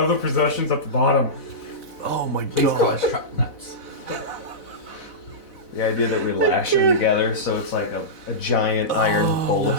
possessions at the bottom. Oh my Please call us truck nuts. The idea that we lash them together so it's like a giant iron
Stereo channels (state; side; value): late; right; 4.0 ms